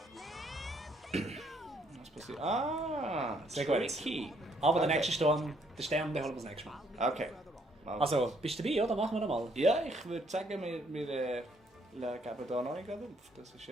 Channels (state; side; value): normal; both; correlation 0.68